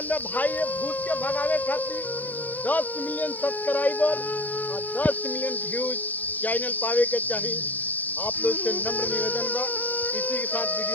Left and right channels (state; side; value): late; right; 0.082 ms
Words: है भाई ये भूत के भगावे खातिर 10 मिलियन सब्सक्राइबर और 10 मिलियन व्यूज चैनल पावे के चाहिए। आप लोग से नम्र निवेदन बा। इसी के साथ